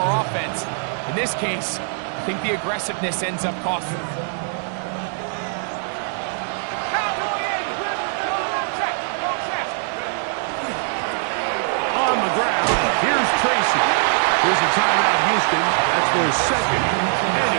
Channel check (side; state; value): left; silent; 55 dB below the other